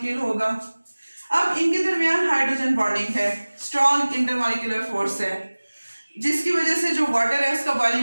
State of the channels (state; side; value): inverted; both; correlation -1.00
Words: होगा। अब इनके दरमियान हाइड्रोजन बॉन्डिंग है, स्ट्रॉन्ग इंटरमॉलिक्यूलर फोर्स है, जिसकी वजह से जो वाटर है उसका